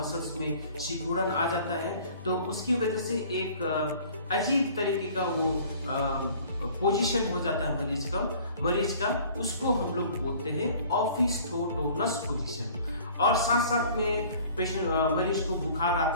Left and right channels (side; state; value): both; inverted; correlation -0.50